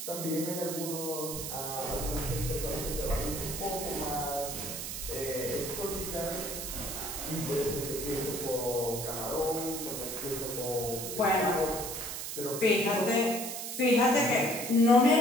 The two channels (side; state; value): right; noise; hiss, 6 dB below the sound